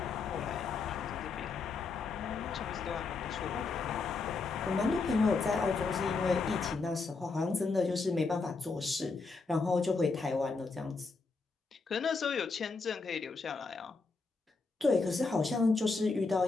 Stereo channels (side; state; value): right; quieter; 4.2 dB